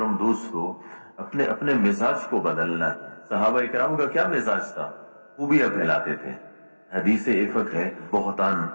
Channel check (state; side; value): inverted; both; correlation -1.00